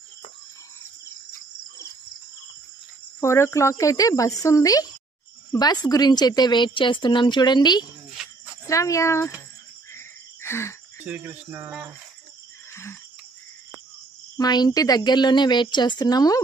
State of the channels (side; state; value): left; quieter; 3.6 dB